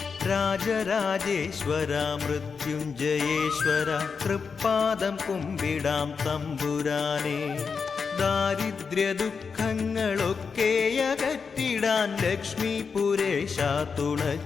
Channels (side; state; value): right; quieter; 5.5 dB